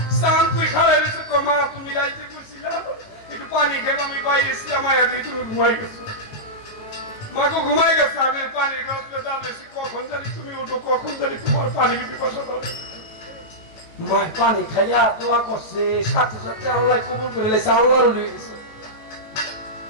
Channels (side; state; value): right; late; 18 ms